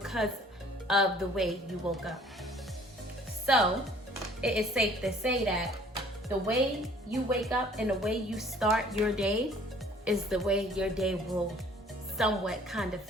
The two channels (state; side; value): normal; both; correlation 0.55